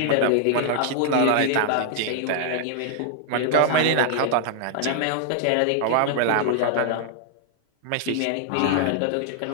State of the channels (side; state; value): both; different; correlation -0.01